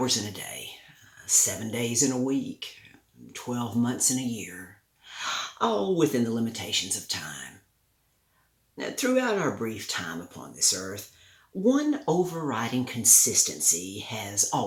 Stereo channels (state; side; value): identical; both; correlation 1.00